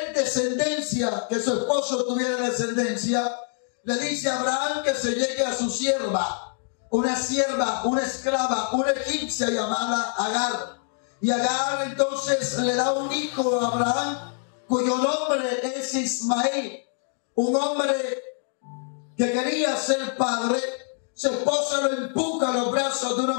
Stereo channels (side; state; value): right; silent; 56 dB below the other